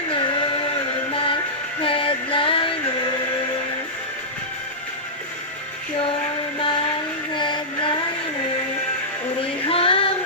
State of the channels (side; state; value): both; normal; correlation -0.13